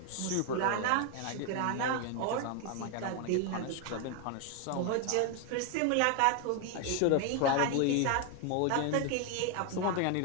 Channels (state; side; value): different; both; correlation 0.01